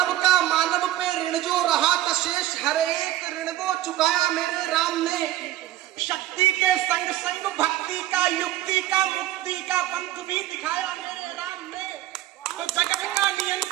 का मानव पे ऋण जो रहा था शेष, हर एक ऋण वो चुकाया मेरे राम ने। शक्ति के संग संग भक्ति का युक्ति का मुक्ति का पंथ भी दिखाया मेरे राम ने। तो जगत का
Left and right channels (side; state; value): left; quieter; 14.3 dB